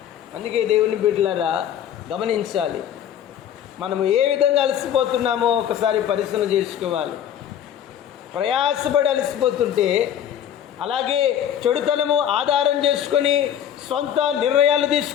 అందుకే దేవుని బిడ్డలారా గమనించాలి, మనము ఏ విధంగా అలసిపోతున్నామో ఒకసారి పరిశీలన చేసుకోవాలి. ప్రయాసపడి అలసిపోతుంటే, అలాగే చెడుతనము ఆధారం చేసుకొని సొంత నిర్ణయాలు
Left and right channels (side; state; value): right; quieter; 9.9 dB